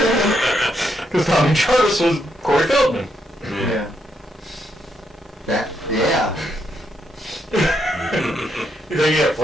Because Tommy Jarvis was Corey Feldman. Yeah. Yeah. You think you have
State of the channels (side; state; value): both; normal; correlation 0.77